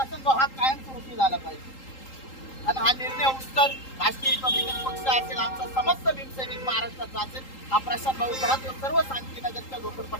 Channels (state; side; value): late; right; 3.8 ms